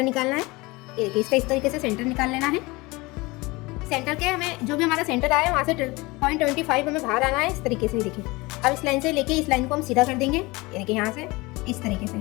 निकालना है। ये देखिए इसका इस तरीके से सेंटर निकाल लेना है। सेंटर के हमें जो भी हमारा सेंटर आया है वहाँ से 0.25 हमें बाहर आना है इस तरीके से। देखिए अब इस लाइन से लेके इस लाइन को हम सीधा कर देंगे। ये देखिए यहाँ से इस तरीके से,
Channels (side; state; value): right; quieter; 23.2 dB